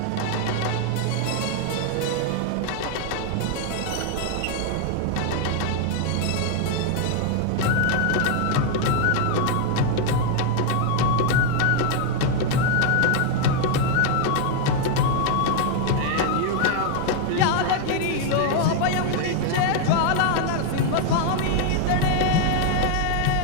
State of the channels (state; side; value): different; both; correlation 0.00